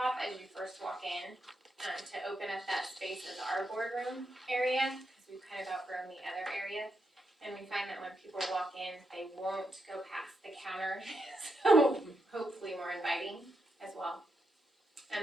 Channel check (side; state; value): both; normal; correlation 0.83